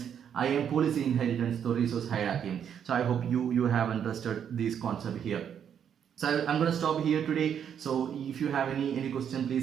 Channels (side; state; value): left; quieter; 8.5 dB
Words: policy inheritance to resource hierarchy. So I hope you have understood this concept here. So I'm going to stop here today. So if you have any question,